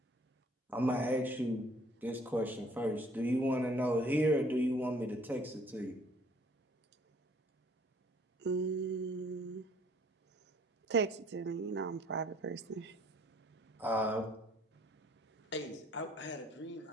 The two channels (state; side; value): normal; both; correlation 0.59